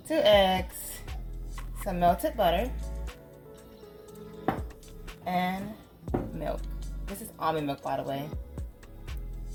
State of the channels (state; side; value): identical; both; correlation 1.00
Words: 2 eggs, some melted butter, and milk. This is almond milk, by the way.